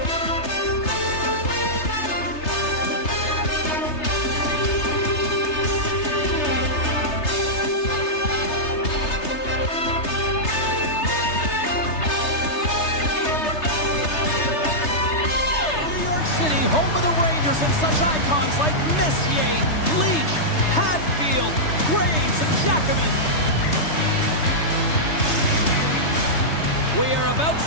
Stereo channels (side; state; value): right; late; 3.3 ms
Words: Home of the Rangers and such icons like Messier, Leach, Hadfield, Graves, and Jackman. We are about